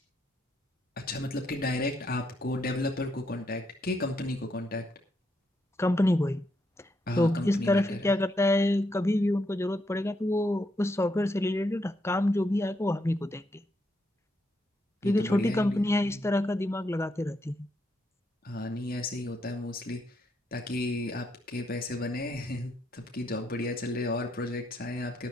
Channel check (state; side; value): normal; both; correlation 0.78